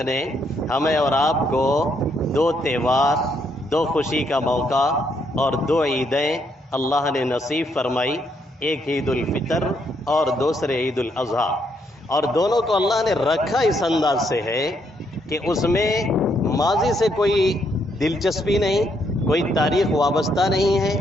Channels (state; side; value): normal; both; correlation 0.74